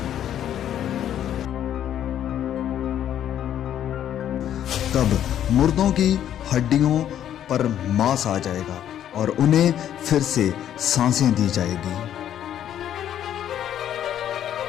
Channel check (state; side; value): quieter; right; 10.6 dB